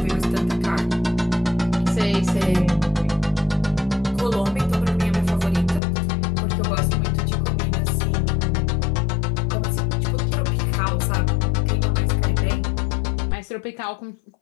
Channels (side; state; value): right; drops out; at 5.8 s